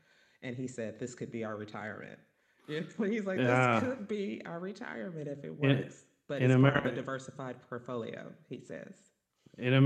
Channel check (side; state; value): both; identical; correlation 1.00